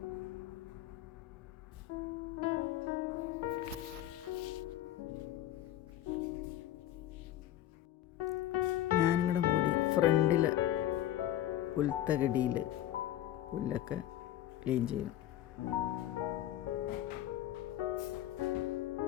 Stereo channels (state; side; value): quieter; right; 12.8 dB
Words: ഞാനിവിടെ കൂടി ഫ്രണ്ടിൽ പുൽത്തകടിയിൽ പുല്ലൊക്കെ ക്ലീൻ ചെയ്യും.